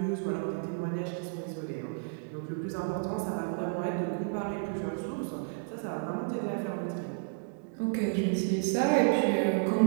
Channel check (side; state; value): left; silent; digital silence